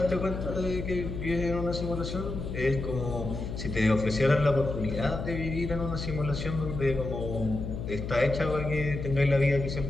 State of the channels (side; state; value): left; noise; hum, 6 dB below the sound